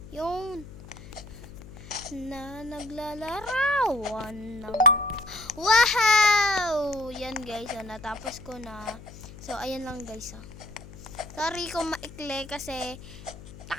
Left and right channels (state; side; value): noise; left; hum, 16 dB below the sound